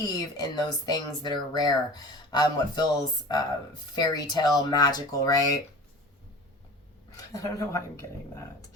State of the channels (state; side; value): normal; both; correlation 0.39